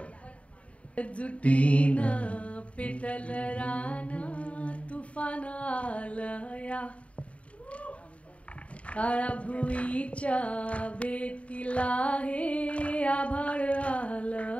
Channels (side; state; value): right; late; 0.064 ms